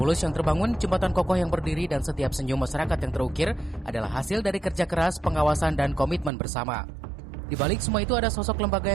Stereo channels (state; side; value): drops out; left; at 6.3 s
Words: yang terbangun, jembatan kokoh yang berdiri, dan setiap senyum masyarakat yang terukir adalah hasil dari kerja keras, pengawasan, dan komitmen bersama. Di balik semua itu ada sosok lembaga